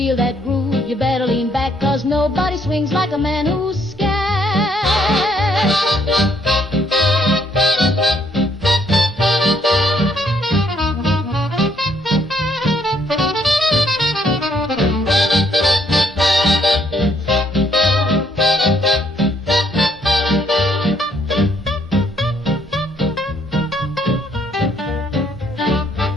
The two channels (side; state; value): both; normal; correlation 0.68